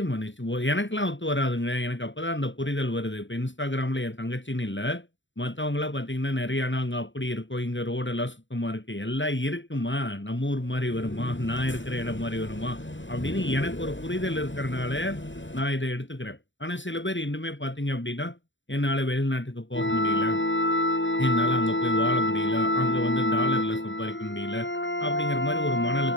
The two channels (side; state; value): right; late; 0.55 ms